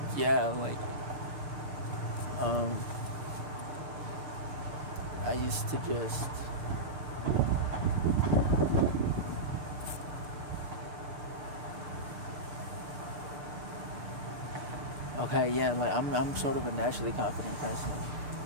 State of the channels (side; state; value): left; late; 6.7 ms